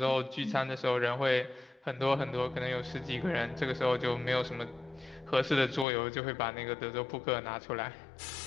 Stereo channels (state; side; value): drops out; right; at 5.9 s